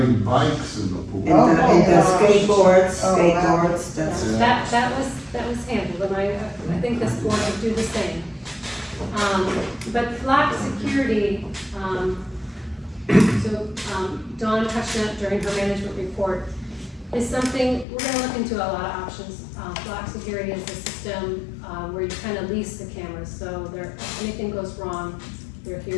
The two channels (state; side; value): drops out; right; at 17.9 s